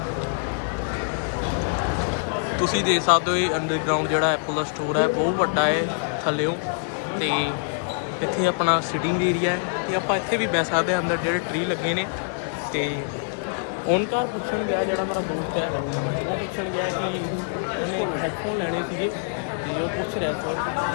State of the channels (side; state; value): right; silent; 62 dB below the other